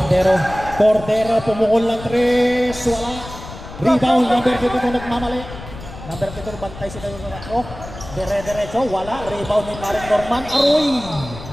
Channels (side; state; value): left; noise; rumble, 13 dB below the sound